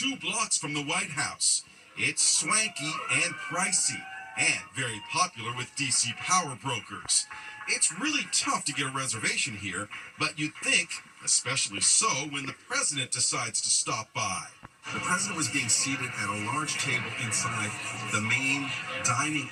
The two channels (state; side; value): identical; both; correlation 1.00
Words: blocks from the White House. It's swanky and pricey, and very popular with DC power brokers. It's really tough to get a reservation here, but you'd think, especially so when the president decides to stop by. The president was being seated at a large table inside the main dining